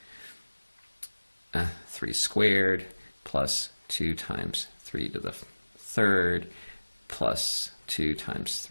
3 squared plus 2 times 3 to the 3rd plus 2 times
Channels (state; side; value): inverted; both; correlation -1.00